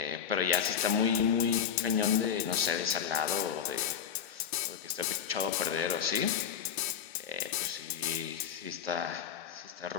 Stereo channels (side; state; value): right; quieter; 8.1 dB